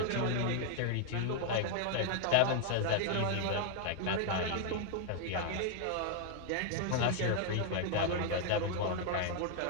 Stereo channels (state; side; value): different; both; correlation 0.00